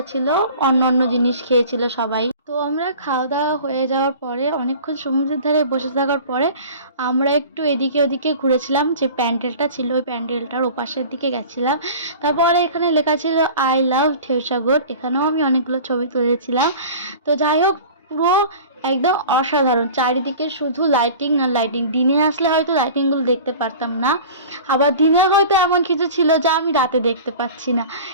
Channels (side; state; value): both; inverted; correlation -0.40